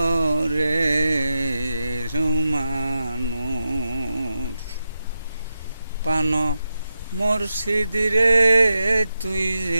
মানুষ, পান মুর্শিদ রে তুই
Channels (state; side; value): inverted; both; correlation -0.89